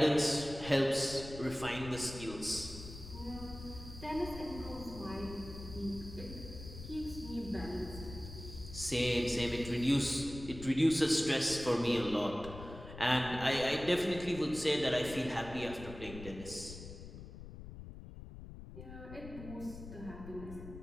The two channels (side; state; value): left; noise; rumble, 12 dB below the sound